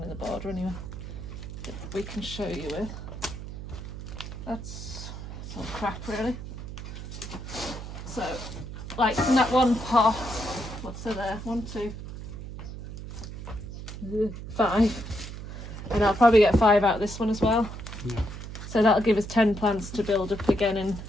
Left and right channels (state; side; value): noise; right; hum, 10 dB below the sound